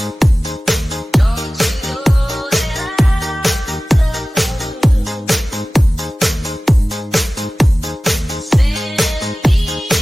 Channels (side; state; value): both; normal; correlation 0.96